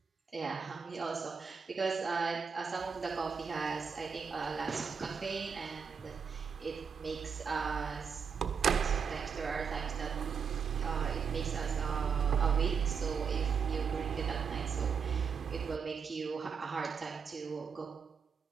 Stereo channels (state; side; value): quieter; left; 6.2 dB